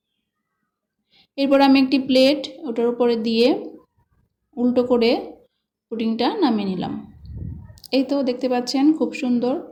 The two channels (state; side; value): identical; both; correlation 1.00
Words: এরপর আমি একটি প্লেট ওটার উপরে দিয়ে উল্টো করে পুডিংটা নামিয়ে নিলাম। এই তো দেখতে পাচ্ছেন খুব